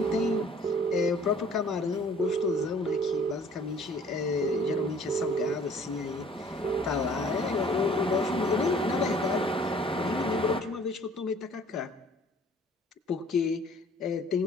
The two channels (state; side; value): normal; both; correlation 0.54